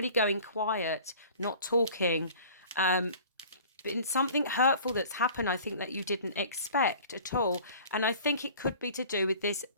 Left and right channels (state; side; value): inverted; both; correlation -0.46